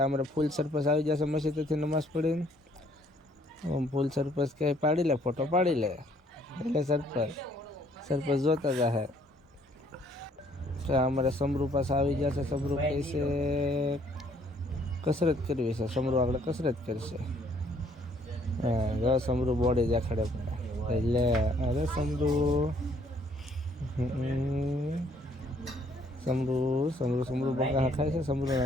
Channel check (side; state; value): both; normal; correlation 0.64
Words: અમારે ફૂલ સરપસ આવી જશે મસ્જિદેથી નમાઝ પડીને. ફૂલ સરપસ કે પાડી લે, ફોટો પાડી લે. એટલે સરપસ જોતા જાહે. ત્યાં અમારે સમરૂ પાસે આવી જશે. સમરૂ કહે છે કસરત કરવી છે. સમરૂ આગળ કસરત કરશે. હા, સમરૂ બોડી દેખાડે એટલે અરે સમરૂ સમરૂ બગા ખાય છે. સમરૂ